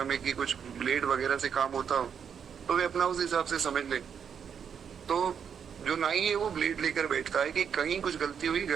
में कि कुछ ब्लेड वगैरह से काम होता हो, तो वे अपना उस हिसाब से समझ ले। तो जो नाई है वो ब्लेड लेकर बैठता है कि कहीं कुछ गलती हुई,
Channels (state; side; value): quieter; left; 7.5 dB